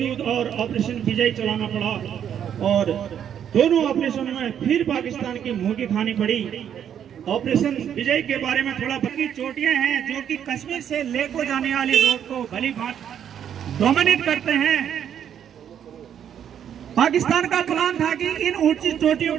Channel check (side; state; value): left; quieter; 9.1 dB